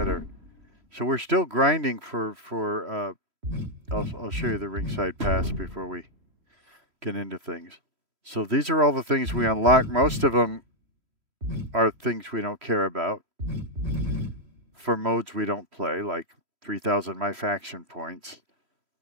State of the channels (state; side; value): late; left; 3.1 ms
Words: So we're still grinding for I'll show you the Ringside Pass before we get into things. So these are all the things we unlock. Most of them are things we don't care about. For modes we don't play, like 3,000 My Faction points.